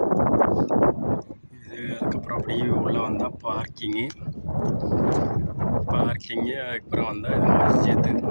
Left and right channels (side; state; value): both; inverted; correlation -1.00